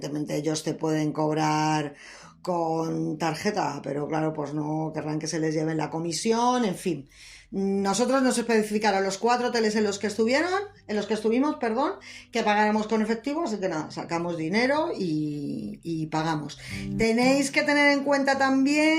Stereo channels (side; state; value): both; identical; correlation 1.00